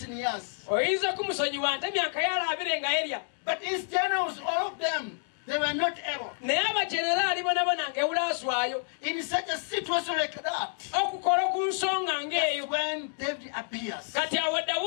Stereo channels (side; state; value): right; silent; 59 dB below the other